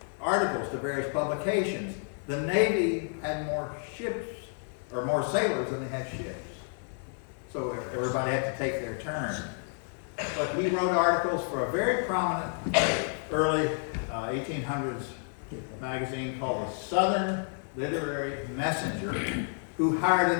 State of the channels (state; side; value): silent; right; 58 dB below the other